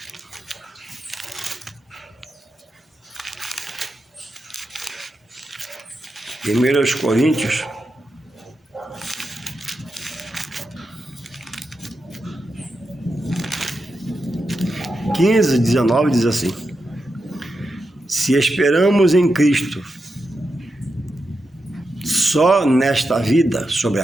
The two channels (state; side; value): normal; both; correlation 0.88